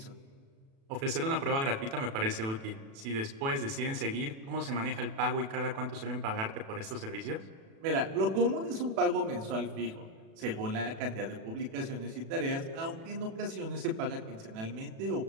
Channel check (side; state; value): left; late; 36 ms